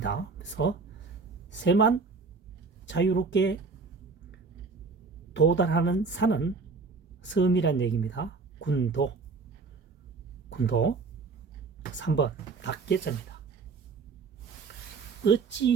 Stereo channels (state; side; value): quieter; left; 4.5 dB